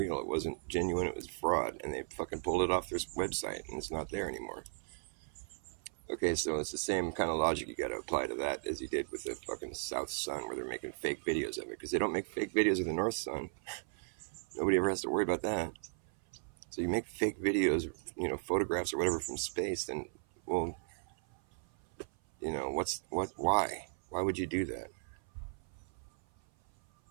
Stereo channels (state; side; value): silent; left; 54 dB below the other